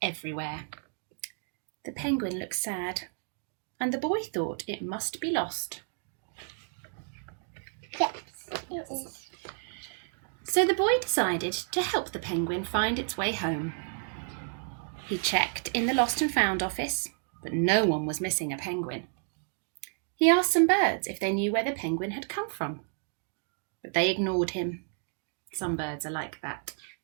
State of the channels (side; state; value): left; silent; 57 dB below the other